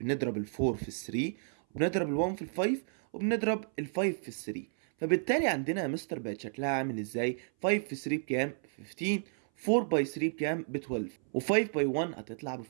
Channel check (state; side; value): silent; left; 56 dB below the other